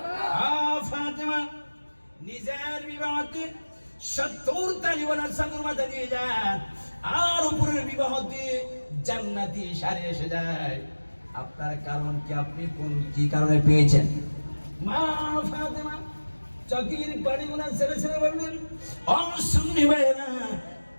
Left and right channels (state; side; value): inverted; both; correlation -1.00